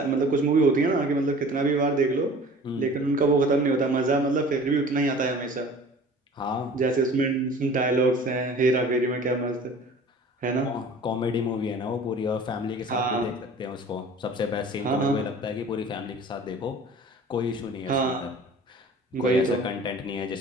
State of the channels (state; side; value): normal; both; correlation 0.45